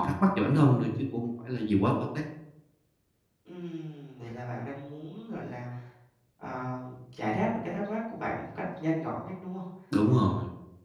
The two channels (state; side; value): identical; both; correlation 1.00